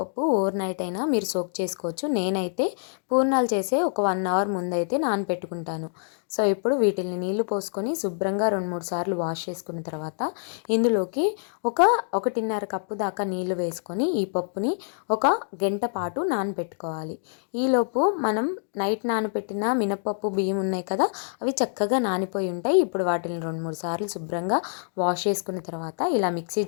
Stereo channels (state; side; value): silent; right; digital silence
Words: ఓవర్ నైట్ అయినా మీరు సోక్ చేసుకోవచ్చు. నేనైతే పూర్ణాలు చేసే ఒక 1 అవర్ ముందైతే నానబెట్టుకుంటాను. సో ఇప్పుడు వీటిని నీళ్లు పోసుకొని శుభ్రంగా 2-3 సార్లు వాష్ చేసుకున్న తర్వాత ఇందులోకి 1.5 కప్పు దాకా నీళ్లు వేసుకొని ఈ పప్పుని 1 గంట పాటు నానబెట్టుకోవాలి. ఈలోపు మనం నైట్ నానబెట్టిన మినపప్పు బియ్యం ఉన్నాయి కదా, అవి చక్కగా నానిపోయి ఉంటాయి. ఇప్పుడు వాటిని 2-3 సార్లు శుభ్రంగా వాష్ చేసుకున్న తర్వాత ఇలా మిక్సీ